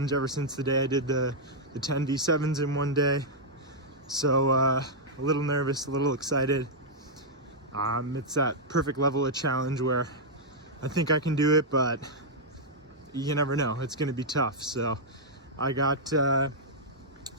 ever since the day I did the TEN V8s in one day. So a little nervous, a little excited. It's that perfect level of challenge where I think I can do it, but you never know. It's going to be tough. So I got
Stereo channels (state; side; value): normal; both; correlation -0.06